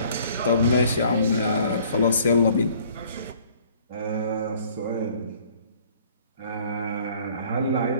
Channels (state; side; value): inverted; both; correlation -0.56